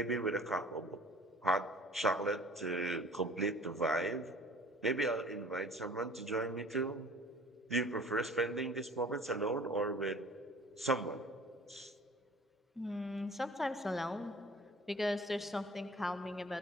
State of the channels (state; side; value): normal; both; correlation 0.48